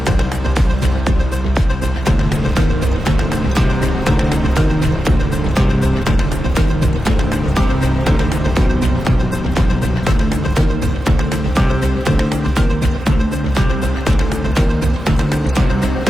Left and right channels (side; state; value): both; normal; correlation 0.90